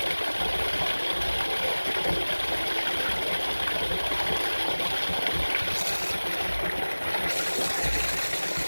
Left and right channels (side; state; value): both; inverted; correlation -1.00